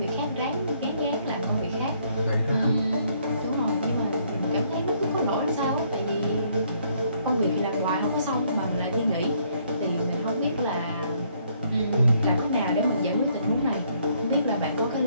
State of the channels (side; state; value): both; inverted; correlation -0.68